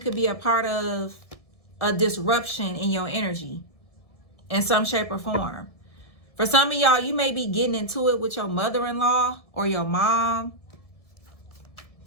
be a part of a disruption in your energy in some shape or form. For some of y'all, you may be getting into it with your mother-in-law or your mom.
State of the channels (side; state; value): right; late; 1.7 ms